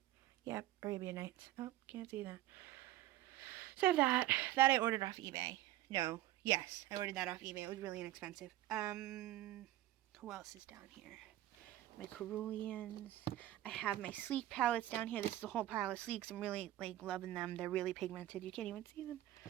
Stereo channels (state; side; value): quieter; left; 14.9 dB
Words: yep, Arabian Nights. Oh, can't see that. So I have that. That I ordered off eBay. No. Yes, I ordered that off eBay. It was really inexpensive. Who else is down here? My Ceruleans. I have my Sleek palettes down here. This is a whole pile of Sleeks. I'm really, like, loving them. They're really pigmented. You can't even see them.